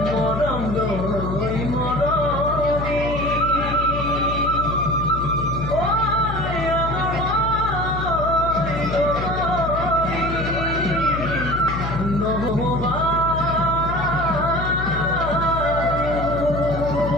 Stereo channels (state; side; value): noise; left; hum, 5 dB below the sound